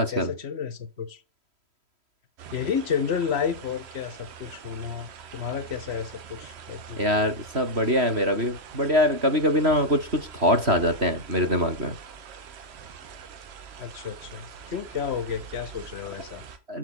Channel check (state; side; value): late; left; 3.1 ms